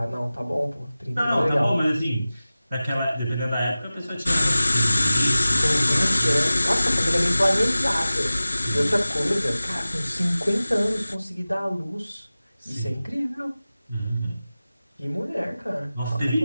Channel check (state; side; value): inverted; both; correlation -0.97